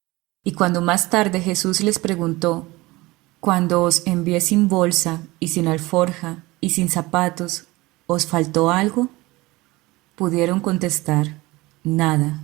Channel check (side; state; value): left; quieter; 21.0 dB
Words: y cuando más tarde Jesús les preguntó: «Cuando os envié sin bolsa y sin alforja y sin zapatos, ¿os faltó algo?», pudieron contestar: